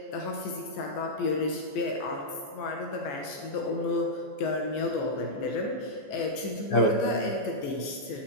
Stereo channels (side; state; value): right; late; 14 ms